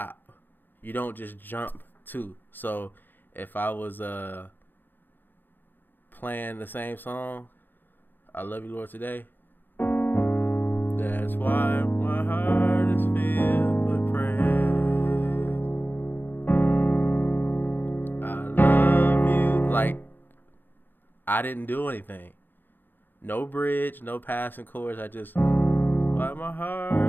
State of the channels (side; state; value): right; late; 0.092 ms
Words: You don't just jump to. So if I was playing the same song, I Love You, Lord, Today, that's why my heart is filled with praise. I love you. Like, I didn't do anything. No bridge, no passing chords. I just, why my